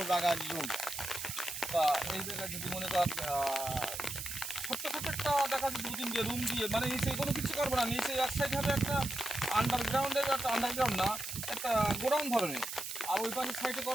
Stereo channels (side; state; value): right; noise; hiss, 6 dB below the sound